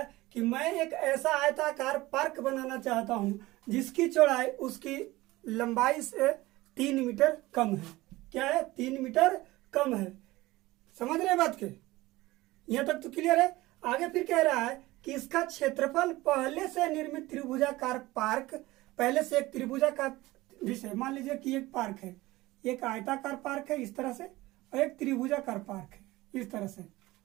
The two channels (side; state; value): left; quieter; 19.0 dB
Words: कि मैं एक ऐसा आयताकार पार्क बनाना चाहता हूं जिसकी चौड़ाई उसकी लंबाई से 3 मीटर कम है। क्या है? 3 मीटर कम है। समझ रहे बात के? यहां तक तो क्लियर है। आगे फिर कह रहा है कि इसका क्षेत्रफल पहले से निर्मित त्रिभुजाकार पार्क, पहले से एक त्रिभुजाकार, जैसे मान लीजिए कि एक पार्क है, एक आयताकार पार्क है इस तरह से, और एक त्रिभुजाकार पार्क है इस तरह से।